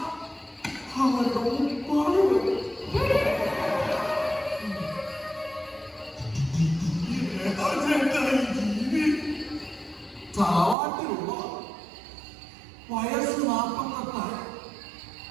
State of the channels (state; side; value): drops out; left; at 10.8 s